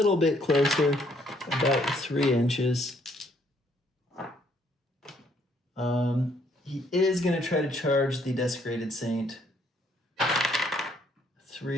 bit closer, about 3 inches. He is going to try to charge the Desecrated Saint.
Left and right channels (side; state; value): both; normal; correlation 0.67